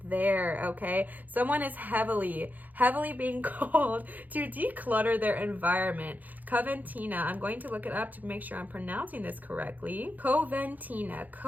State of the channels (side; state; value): left; late; 0.082 ms